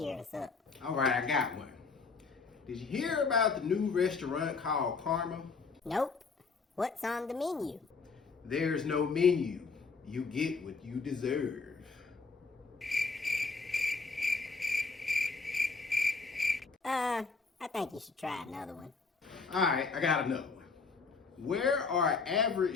us up. Alright, I got one. Did you hear about the new restaurant called Karma? Nope. What's on the menu? There's no menu. You get what you deserve. I think you should try another one. Alright, I got another one. Where are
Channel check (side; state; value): right; quieter; 4.6 dB